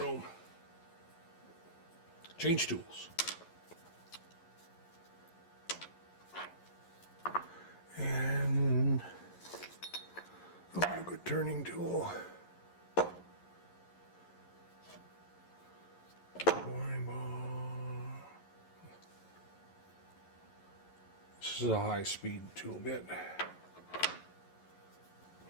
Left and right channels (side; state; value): right; late; 11 ms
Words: Change tools. And I want a good turning tool. Boring ball. This is a high-speed tool bit.